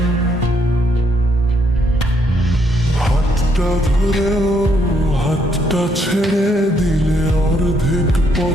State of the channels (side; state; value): both; normal; correlation 0.72